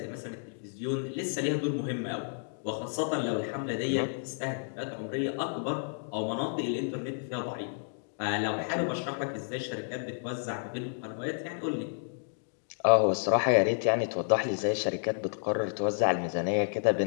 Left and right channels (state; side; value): silent; right; digital silence